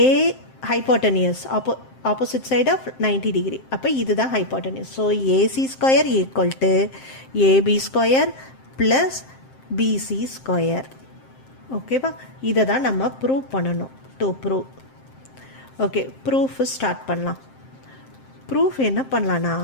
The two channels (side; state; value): right; late; 7.6 ms